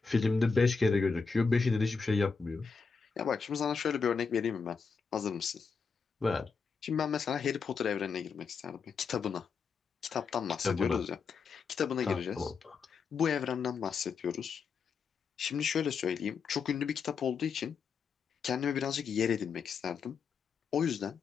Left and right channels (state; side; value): quieter; right; 5.4 dB